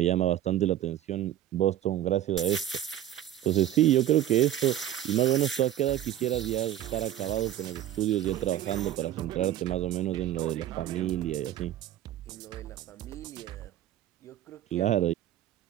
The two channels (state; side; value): quieter; left; 11.9 dB